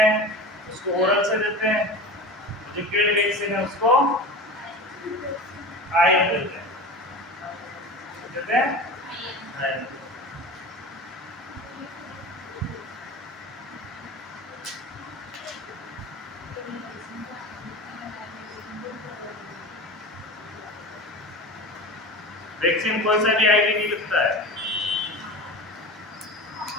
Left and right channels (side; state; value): both; normal; correlation 0.31